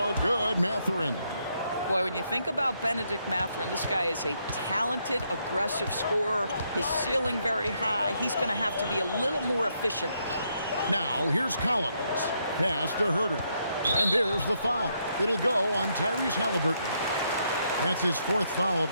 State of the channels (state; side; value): inverted; both; correlation -0.76